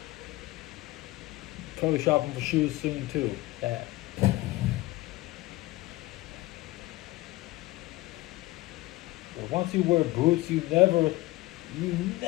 Probably shopping for shoes soon too. But once you wear boots, you never, you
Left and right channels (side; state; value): right; quieter; 18.7 dB